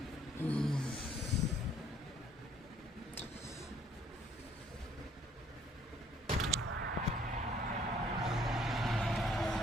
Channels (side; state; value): both; normal; correlation 0.62